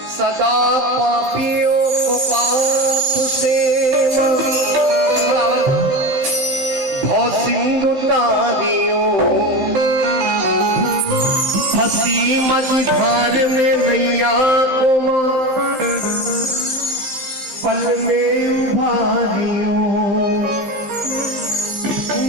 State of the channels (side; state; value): left; late; 15 ms